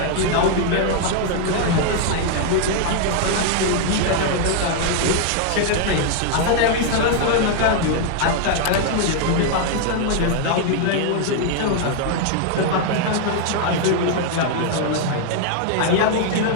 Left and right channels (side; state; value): both; different; correlation 0.00